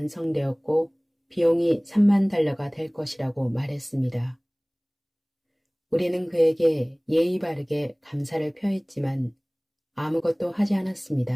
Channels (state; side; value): identical; both; correlation 1.00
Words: 비용이 3만 달러가 될 것이라고 말했습니다. 우리는 그에게 예의 바르게 감사를 표했지만 아무것도 하지